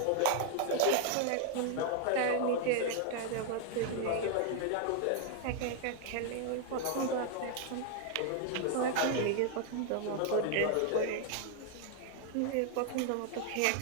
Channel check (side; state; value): both; different; correlation 0.00